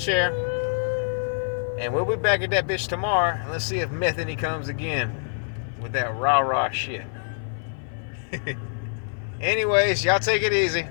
share. And we'll be back at that bitch tomorrow, and let's see if Methany comes again with that rah-rah shit. Anyways, y'all take it easy.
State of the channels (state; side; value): silent; right; 57 dB below the other